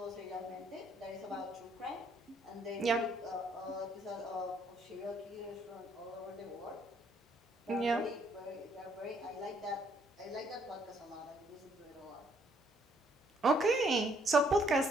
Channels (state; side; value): normal; both; correlation 0.68